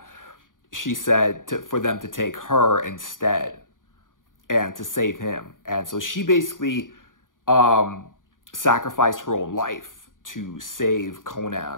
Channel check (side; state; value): right; late; 0.89 ms